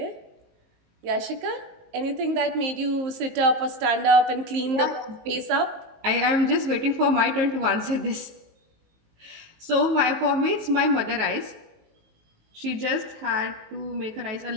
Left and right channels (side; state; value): left; late; 19 ms